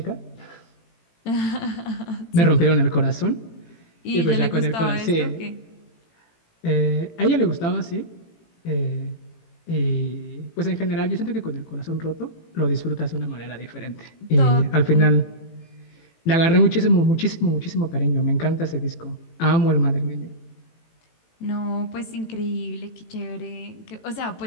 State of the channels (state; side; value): late; right; 18 ms